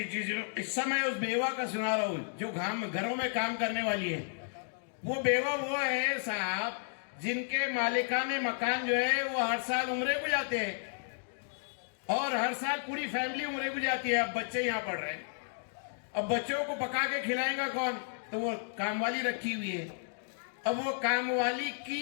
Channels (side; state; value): right; silent; digital silence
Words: قصہ میں اس بیوہ کا سنا رہا ہوں جو گھروں میں کام کرنے والی ہے. وہ بیوہ وہ ہے صاحب جن کے مالکان مکان جو ہے وہ ہر سال عمرے کو جاتے ہیں اور ہر سال پوری فیملی عمرے کو جاتی ہے. اب بچے یہاں پڑھ رہے ہیں, اب بچوں کو پکا کے کھلائیں گا کون؟ تو وہ کام والی رکھی ہوئی ہے. اب وہ کام والی